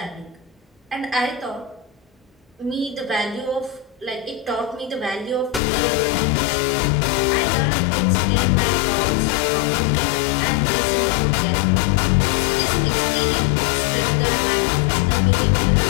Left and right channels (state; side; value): drops out; right; at 5.6 s